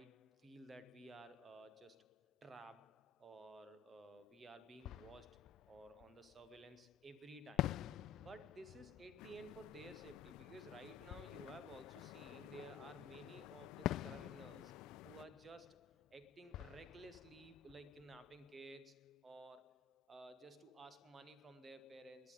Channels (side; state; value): right; quieter; 7.6 dB